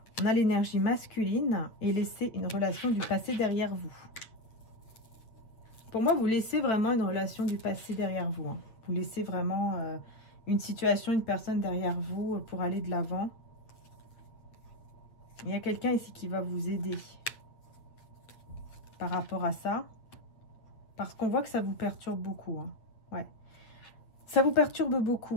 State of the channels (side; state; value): right; late; 8.5 ms